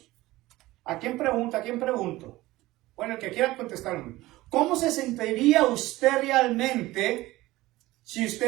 ¿A quién pregunta? ¿A quién pregunto? Bueno, el que quiera contestar. ¿Cómo se sentiría usted realmente si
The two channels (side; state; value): left; quieter; 18.2 dB